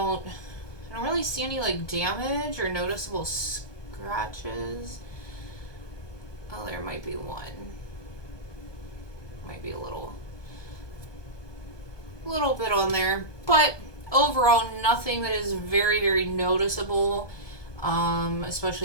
really see any like damage or noticeable scratches. Oh, there might be one. Might be a little bit on there, but overall nothing that is very, very noticeable,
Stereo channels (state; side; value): late; right; 1.2 ms